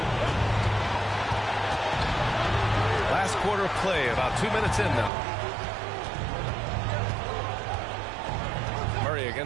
Last quarter of play, about 2 minutes in now. Murray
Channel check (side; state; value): left; drops out; at 5.1 s